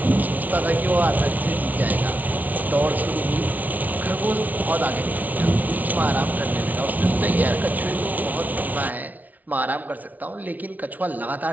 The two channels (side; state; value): left; late; 0.075 ms